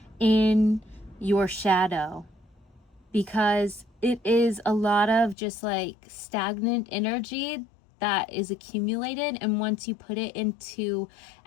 in your shadow, because it is a lot of just like stagnant energy that is accumulated, and once you put it into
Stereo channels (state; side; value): drops out; right; at 5.4 s